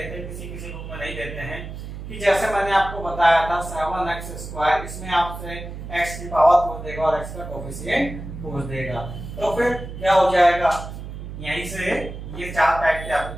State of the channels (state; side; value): noise; right; hum, 10 dB below the sound